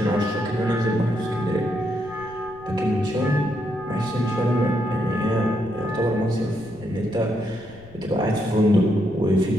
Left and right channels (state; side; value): noise; left; rumble, 21 dB below the sound